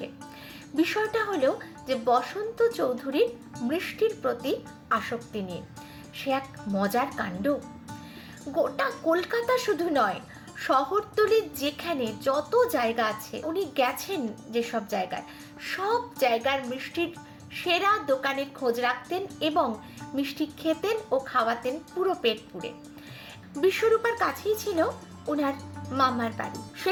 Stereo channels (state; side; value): identical; both; correlation 1.00